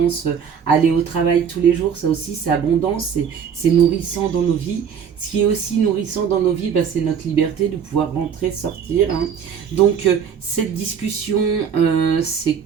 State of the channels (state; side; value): quieter; left; 7.4 dB